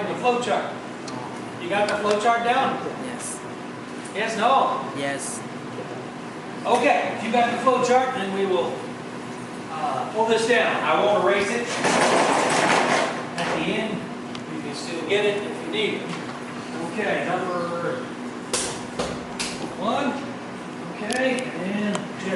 the flowchart. You got the flowchart down? Yes. Yes, no? Yes. Okay, if you got the flowchart, then we will pull this down. I won't erase it. At the end, you can still get it if you need it. Okay, number 1. Okay, and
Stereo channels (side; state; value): both; identical; correlation 1.00